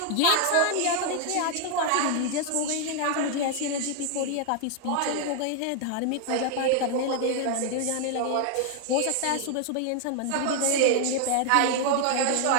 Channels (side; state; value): both; different; correlation 0.00